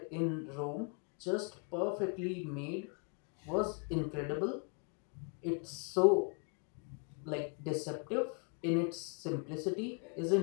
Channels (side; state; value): right; quieter; 38.1 dB